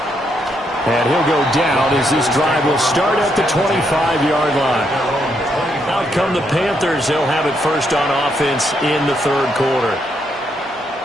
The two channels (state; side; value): normal; both; correlation 0.77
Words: And he'll go down as this drive will start at the 25-yard line. Out come the Panthers. They'll have it first on offense in the third quarter.